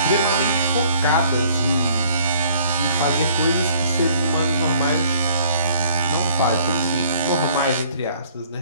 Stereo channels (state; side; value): inverted; both; correlation -0.59